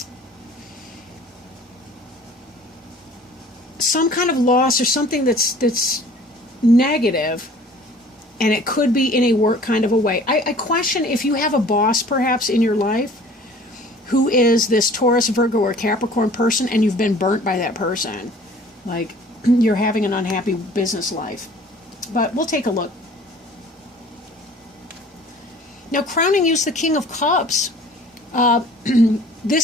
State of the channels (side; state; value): both; normal; correlation 0.50